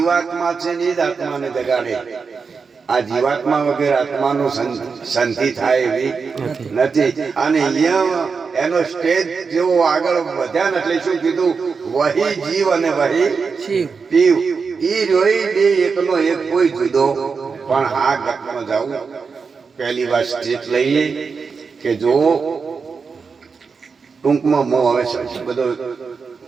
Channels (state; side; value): quieter; left; 5.2 dB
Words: છે ને એ જ આત્માને જગાડે. આ જીવાત્મા વગર આત્માનું શાંતિ થાય એવી નથી. અને અહીંયા એનો સ્ટેજ જેવો આગળ વધ્યા ને એટલે શું કીધું, વહી જીવ અને વહી પીવ. ઈ રોઈ બે એકનો એક કોઈ જુદો. પણ આ ગતમાં જાવું પહેલી વાર સ્ટેજ લઈ લે કે જો ટૂંકમાં મો હવે બધો